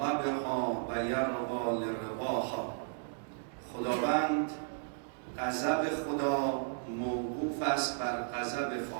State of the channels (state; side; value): silent; left; digital silence